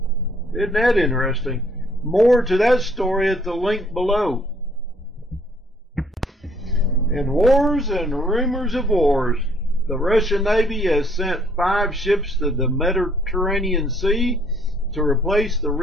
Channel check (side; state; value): both; normal; correlation 0.63